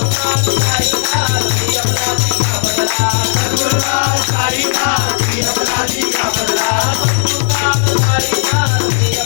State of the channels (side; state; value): right; silent; digital silence